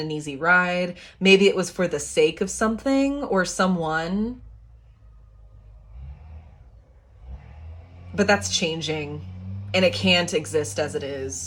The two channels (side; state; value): both; identical; correlation 1.00